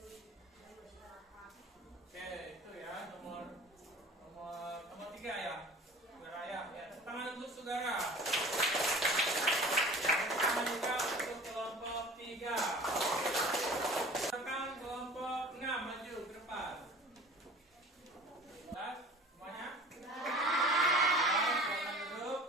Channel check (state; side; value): normal; both; correlation 0.43